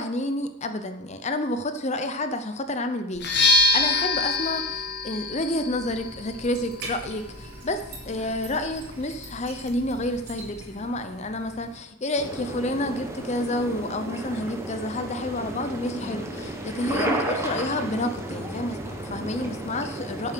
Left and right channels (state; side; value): normal; both; correlation 0.30